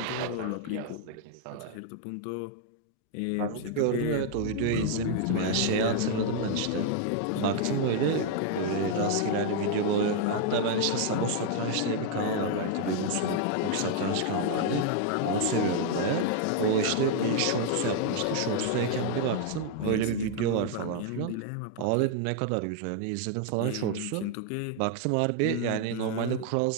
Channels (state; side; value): different; both; correlation 0.00